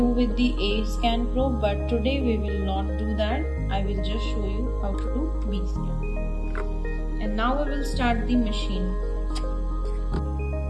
with the A scan probe, but today we will not do that. I will just show you how to do B scan. And now we will start the machine.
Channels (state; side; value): identical; both; correlation 1.00